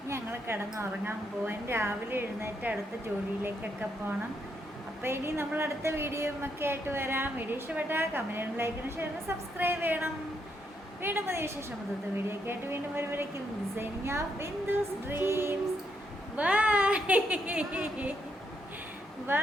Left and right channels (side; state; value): both; normal; correlation 0.78